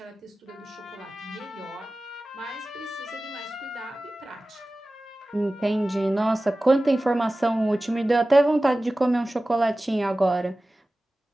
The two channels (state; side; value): normal; both; correlation 0.97